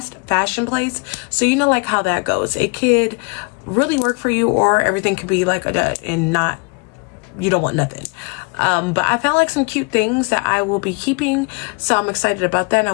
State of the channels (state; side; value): quieter; right; 31.9 dB